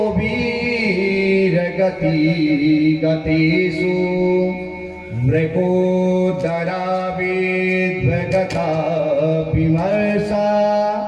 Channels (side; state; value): both; identical; correlation 1.00